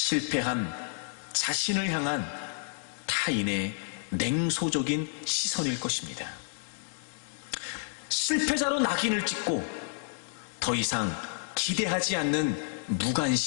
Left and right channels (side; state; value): right; silent; digital silence